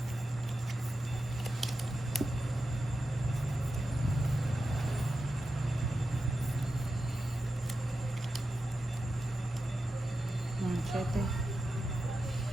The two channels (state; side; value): normal; both; correlation 0.91